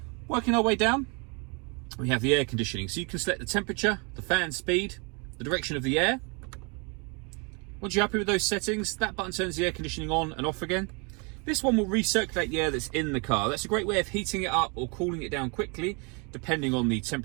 Working our way down, we have the air conditioning. So you can select the temperature, the fan speed, the direction of the air. Once you're happy with those settings, that button turns the air conditioning on and off again. This one will recirculate the air that's in the car. That's a great way of heating it up or cooling it down quickly, depending on the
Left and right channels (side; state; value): left; quieter; 32.9 dB